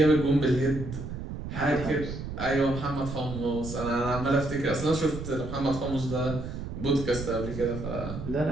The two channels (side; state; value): right; noise; rumble, 7 dB below the sound